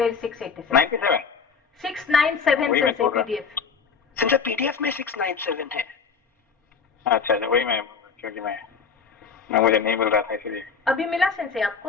687 97 697 से पीडीएफ। सिंचा पीडीएफ में 697 है। अच्छा वही मैं, क्योंकि मैं मुझे नहीं मिल रहा था इसलिए। अभी मिला सेंसे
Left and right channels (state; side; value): quieter; right; 5.8 dB